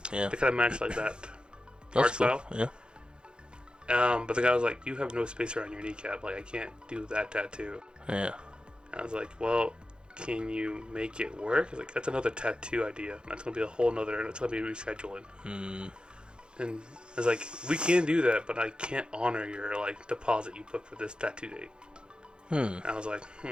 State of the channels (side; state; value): left; late; 0.050 ms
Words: Yeah. They kind of match like that art style. Yeah. But the guy was like, "You have no space around your kneecap. Like I can't do that tattoo." Yeah. I was like, "Well, can you make it work?" He's like, "That's another tattoo idea. That's gonna be a whole nother. It's gonna be rescheduling." And I was like, "We can do that, but I can't honor your like deposit you put for this tattoo date." And I was like,